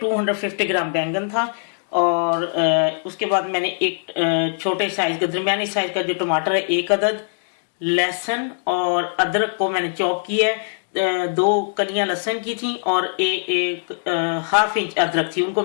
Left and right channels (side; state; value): right; silent; digital silence